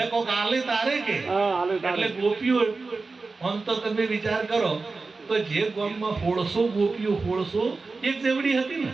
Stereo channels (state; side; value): quieter; left; 3.9 dB